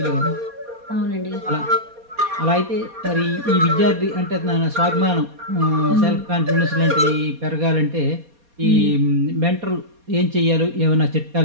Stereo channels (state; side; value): late; left; 4.2 ms